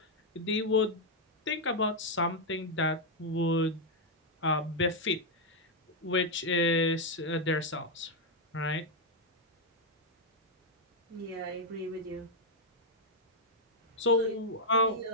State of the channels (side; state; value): both; normal; correlation -0.01